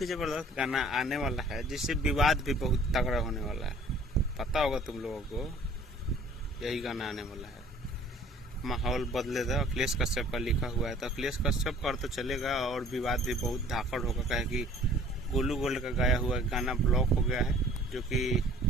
ही जबरदस्त गाना आने वाला है जिससे विवाद भी बहुत तगड़ा होने वाला है। पता होगा तुम लोगों को, यही गाना आने वाला है। माहौल बदलेगा, अखिलेश कश्यप का लिखा हुआ है, तो अखिलेश कश्यप पर तो चलेगा और विवाद भी बहुत धाकड़ होगा। कहे कि गोलू गोल्ड का गाया हुआ गाना ब्लॉक हो गया है, जो कि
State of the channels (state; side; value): normal; both; correlation 0.52